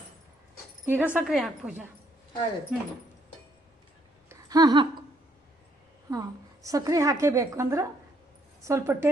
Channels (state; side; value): normal; both; correlation 0.69